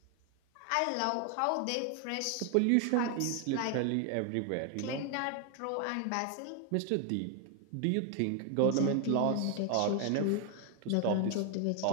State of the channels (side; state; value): both; different; correlation 0.01